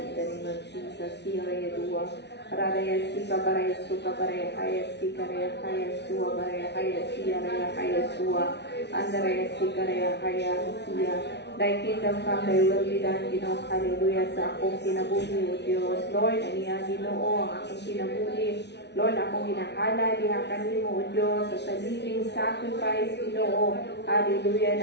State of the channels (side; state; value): right; late; 0.50 ms